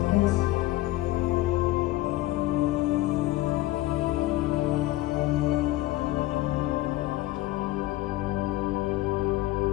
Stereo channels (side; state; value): right; quieter; 17.1 dB